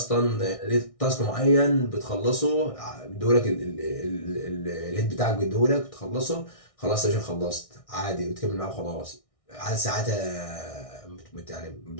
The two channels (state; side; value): late; right; 1.6 ms